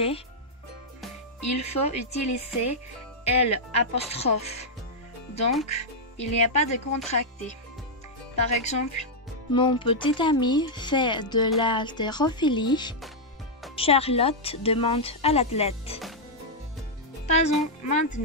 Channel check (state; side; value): normal; both; correlation -0.04